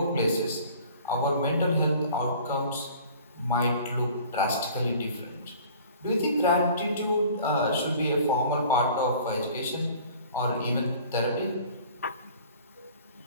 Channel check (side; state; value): both; inverted; correlation -0.48